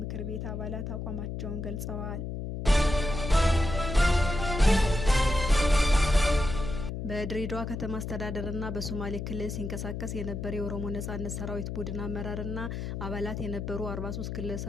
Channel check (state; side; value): noise; left; hum, 5 dB below the sound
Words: ቤት አባላት አቋማቸውን ገልጸዋል። በድሬዳዋ ከተማ አስተዳደርና በሶማሌ ክልል ሲንቀሳቀስ የነበረ የኦሮሞ ነጻነት ሰራዊት ቡድን አመራርና አባላት የነበሩ 43